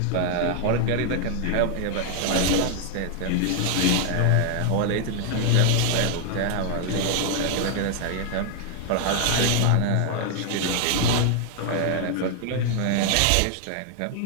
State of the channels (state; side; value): different; both; correlation 0.00